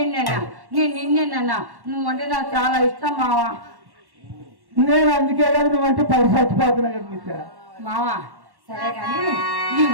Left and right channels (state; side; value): late; left; 1.1 ms